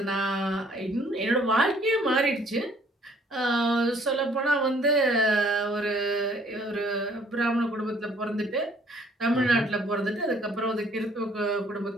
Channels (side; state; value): both; normal; correlation 0.60